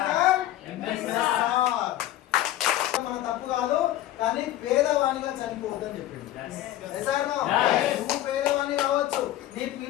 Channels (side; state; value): right; quieter; 13.9 dB